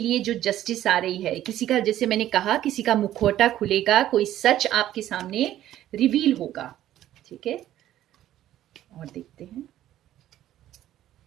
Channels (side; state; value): left; quieter; 12.8 dB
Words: जो जस्टिस आ रही है, किसी का, जैसे मैंने कहा, किसी का मुखौटा खुलेगा, कोई सच आपके सामने रिवील होगा, ठीक है। और देखते हैं